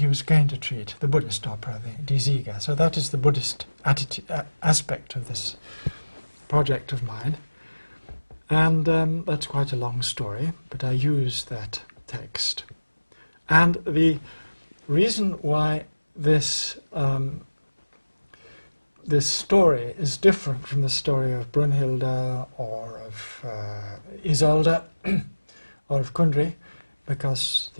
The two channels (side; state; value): both; inverted; correlation -1.00